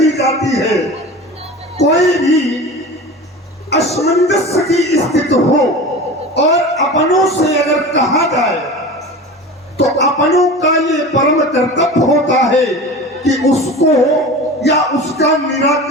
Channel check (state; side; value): normal; both; correlation 0.33